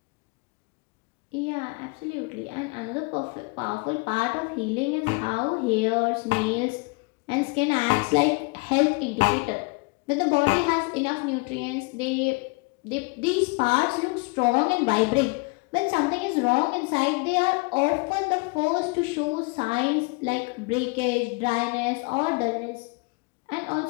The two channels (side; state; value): right; quieter; 28.9 dB